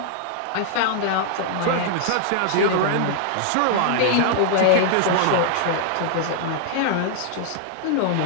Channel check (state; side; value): different; both; correlation 0.00